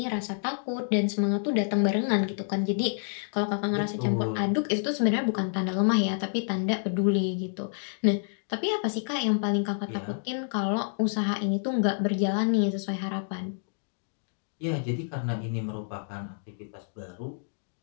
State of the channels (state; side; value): silent; right; digital silence